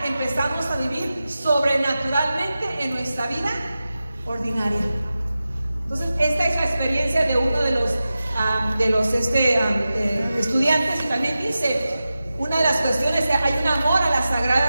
empezamos a vivir sobrenaturalmente en nuestra vida ordinaria. Entonces, esta es la experiencia de uno de los estudiantes, y también dice, una de las cuestiones es que hay un amor a las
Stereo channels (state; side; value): inverted; both; correlation -0.94